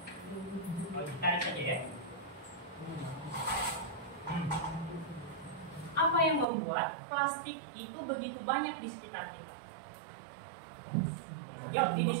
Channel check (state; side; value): drops out; left; at 6.5 s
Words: Tarik saja ya. Apa yang membuat plastik itu begitu banyak di sekitar kita? Yuk